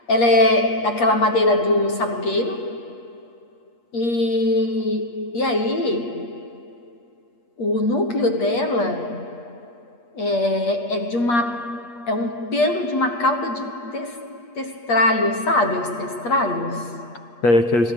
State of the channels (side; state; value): right; late; 8.4 ms